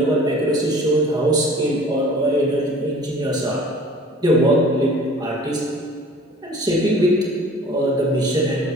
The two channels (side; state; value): both; normal; correlation 0.47